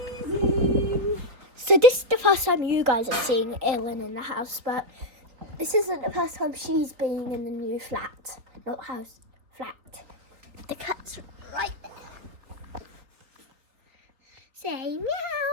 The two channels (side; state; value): left; late; 4.0 ms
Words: So this is the first time you guys are seeing Elin in the house, but this isn't the first time she's been in the new flat. Not house, flat. The cat's right there. Say